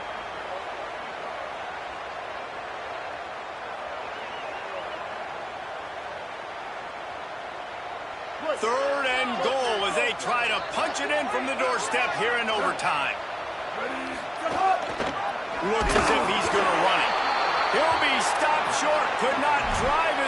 Third and goal as they try to punch it in from the doorstep here in overtime. Looks as if he's going to run it. He'll be stopped short. Could not drive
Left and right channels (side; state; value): both; identical; correlation 1.00